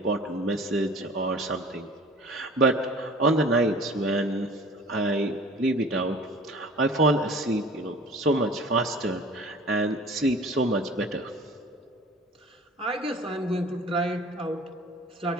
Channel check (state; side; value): normal; both; correlation 0.45